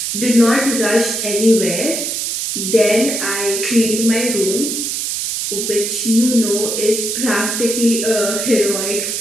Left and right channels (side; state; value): right; noise; hiss, 2 dB below the sound